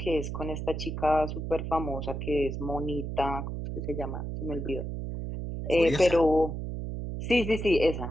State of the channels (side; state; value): right; noise; hum, 5 dB below the sound